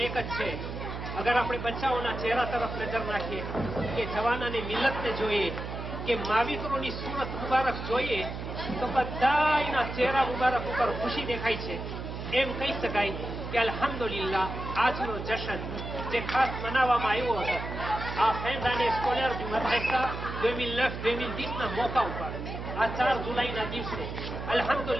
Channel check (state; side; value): noise; right; hum, 7 dB below the sound